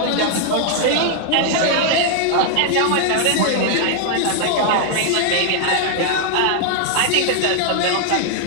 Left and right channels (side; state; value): both; different; correlation 0.00